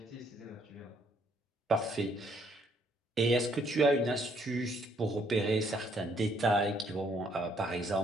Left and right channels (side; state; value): both; normal; correlation 0.68